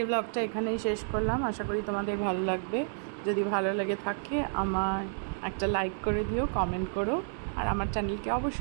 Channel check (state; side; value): silent; left; digital silence